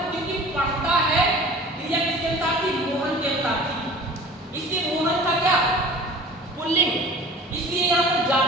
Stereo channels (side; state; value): both; normal; correlation 0.43